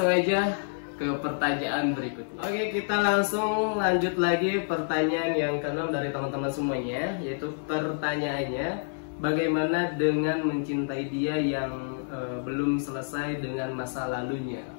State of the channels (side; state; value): right; silent; 59 dB below the other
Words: aja ke pertanyaan berikutnya. Oke, kita langsung lanjut lagi pertanyaan yang ke-6 dari teman-teman semuanya, yaitu pertanyaannya, bagaimana dengan mencintai dia yang belum selesai dengan masa lalunya?